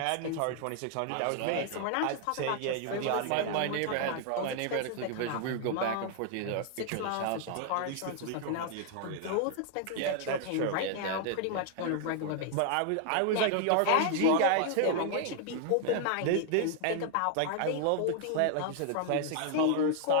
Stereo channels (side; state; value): both; different; correlation 0.00